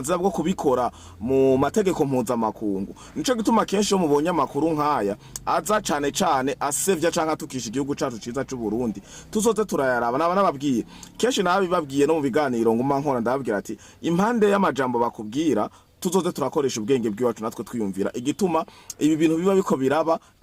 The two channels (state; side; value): identical; both; correlation 1.00